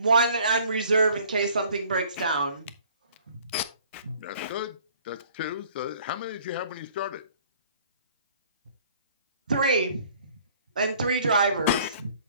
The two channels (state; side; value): inverted; both; correlation -0.55